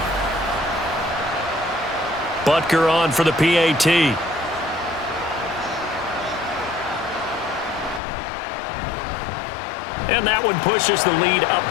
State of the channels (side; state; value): right; drops out; at 8.0 s